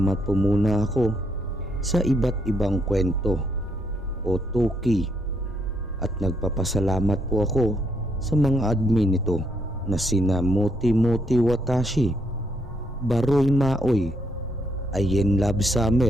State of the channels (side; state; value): both; normal; correlation 0.74